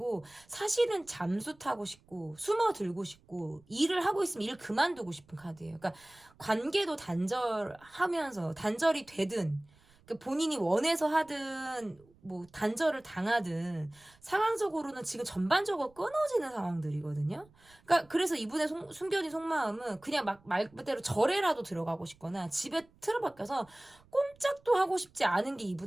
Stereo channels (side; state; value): right; noise; rumble, 29 dB below the sound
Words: 사실은 잠수 타고 싶고 숨어들고 싶고 일을 하고 있으면 일 그만두고 싶은 카드예요. 그러니까 관계도 단절이 되든, 그러니까 본인이 원해서 하든 뭐 단절을 당하든 상황적으로는 지금 전반적으로 끊어지는 상황들이거든요. 그러니까 그래서 이분의 숨겨진 속마음은 그냥 말 그대로 절에라도 들어가고 싶거나 집에 틀어박혀서 꼼짝도 하고 싶지 않은 게